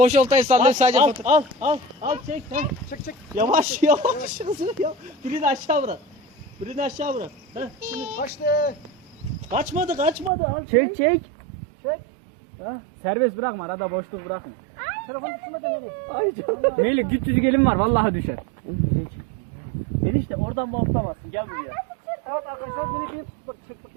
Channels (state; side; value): drops out; left; at 10.3 s